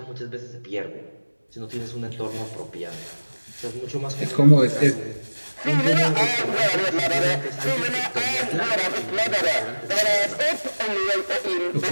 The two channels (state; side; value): inverted; both; correlation -1.00